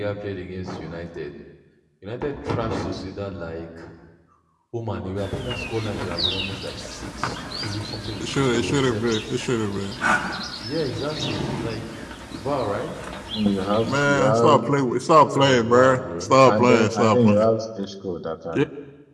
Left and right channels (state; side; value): identical; both; correlation 1.00